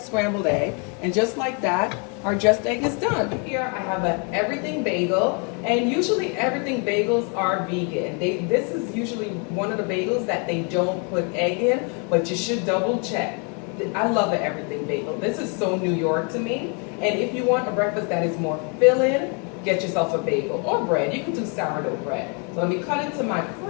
egg, and just like that, our just egg is done. Here I have an everything bagel, and usually everything bagels are vegan. This is usually one of the bagels that they don't put egg in, but you should double check. I love an everything bagel. This is so New York to me. And if you want a breakfast that is more filling, get yourself a bagel or bread. You can do sourdough bread. So let me cut into my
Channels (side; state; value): right; quieter; 36.2 dB